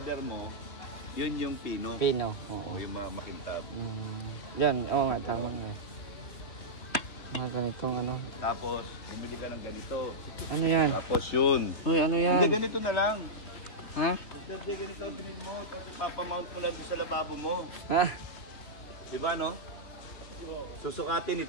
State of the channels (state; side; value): late; right; 3.2 ms